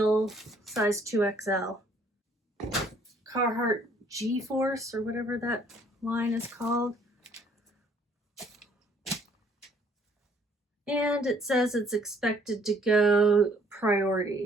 size 2XL. Carhartt G-Force or whatever that line is called. And it says it's expected to go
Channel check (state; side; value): normal; both; correlation 0.62